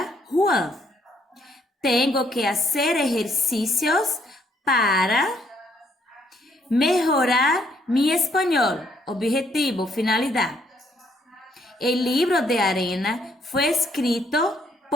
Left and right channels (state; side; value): normal; both; correlation 0.69